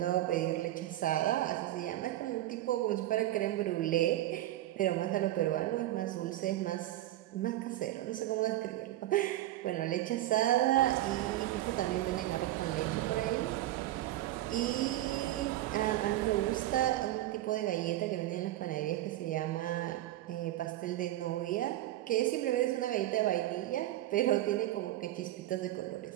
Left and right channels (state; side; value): quieter; left; 14.9 dB